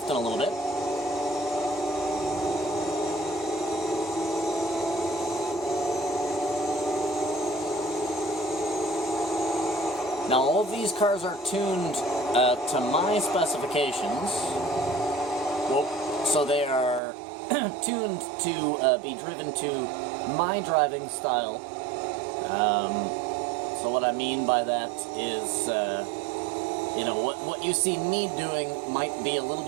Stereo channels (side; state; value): left; drops out; at 17.0 s